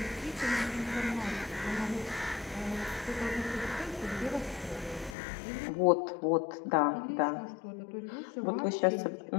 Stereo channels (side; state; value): right; drops out; at 5.2 s